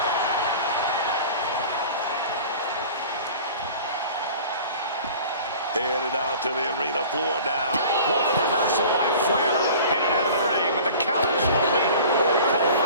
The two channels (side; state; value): both; inverted; correlation -0.42